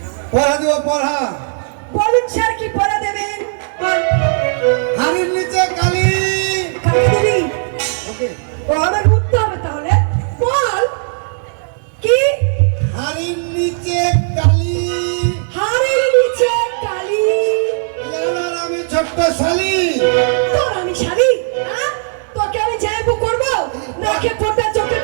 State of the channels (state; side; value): silent; left; digital silence